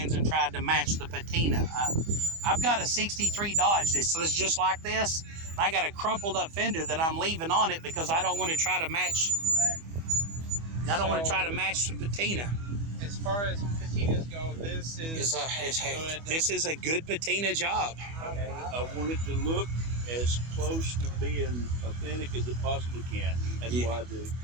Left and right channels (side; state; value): left; late; 25 ms